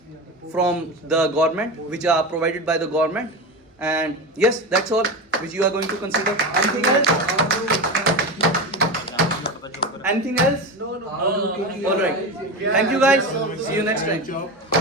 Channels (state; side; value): normal; both; correlation 0.23